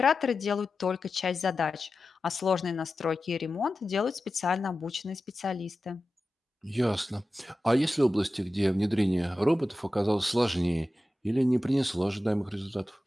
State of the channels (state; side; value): normal; both; correlation 0.93